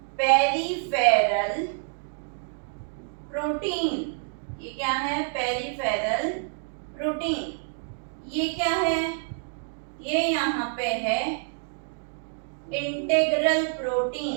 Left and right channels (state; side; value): silent; left; digital silence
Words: Peripheral protein. ये क्या है? Peripheral protein. ये क्या है? ये यहाँ पे है इंटीग्रल